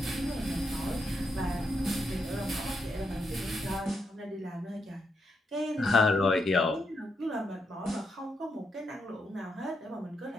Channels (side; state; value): both; normal; correlation 0.81